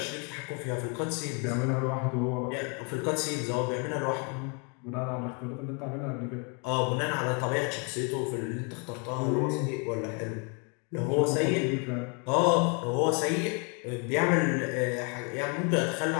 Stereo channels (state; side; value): quieter; right; 35.1 dB